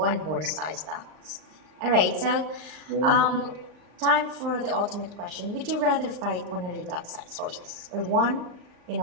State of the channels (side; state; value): left; late; 39 ms